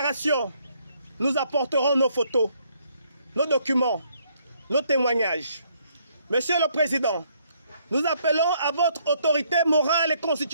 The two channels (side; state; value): both; inverted; correlation -0.69